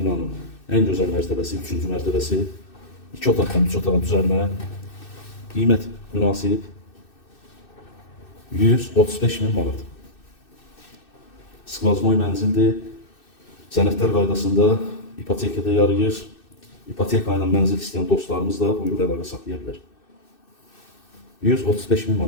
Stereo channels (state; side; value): late; right; 2.6 ms